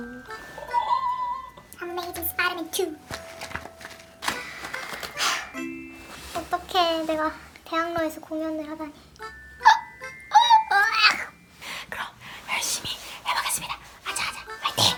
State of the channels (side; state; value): both; identical; correlation 1.00